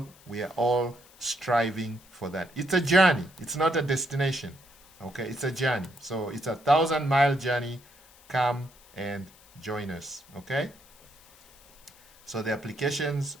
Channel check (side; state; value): left; noise; hiss, 26 dB below the sound